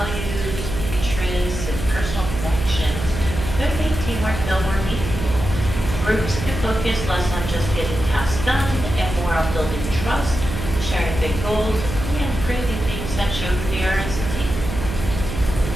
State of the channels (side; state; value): right; noise; hum, 6 dB below the sound